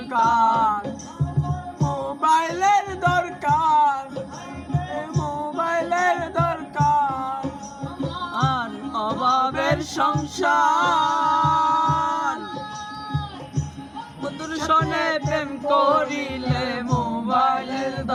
মোবাইলের দরকার, মোবাইলের দরকার। আর অভাবের সংসার, বন্ধুর সনে প্রেম করিলে মোবাইলের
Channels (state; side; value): identical; both; correlation 1.00